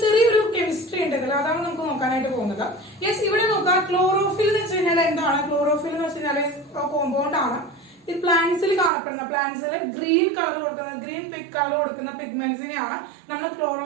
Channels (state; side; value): drops out; left; at 8.9 s